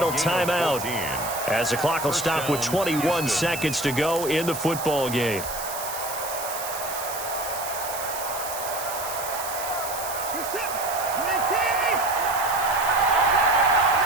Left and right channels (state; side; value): noise; right; hiss, 8 dB below the sound